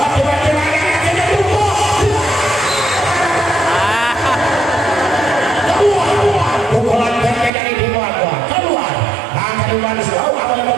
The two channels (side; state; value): left; drops out; at 7.5 s